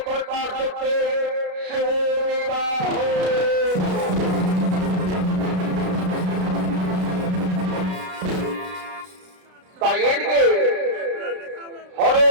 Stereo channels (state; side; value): late; left; 33 ms